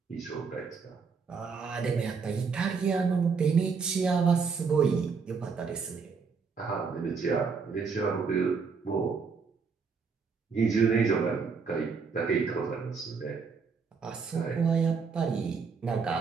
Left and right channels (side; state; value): left; quieter; 5.3 dB